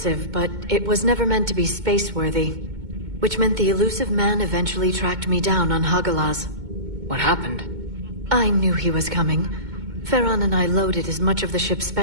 but it was never meant to be space-worthy. Which meant the elusive man eventually tracked me down on Hagalaz. What happened? I knew he was coming. Farron and I loaded as much of the ship's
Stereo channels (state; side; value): late; left; 2.2 ms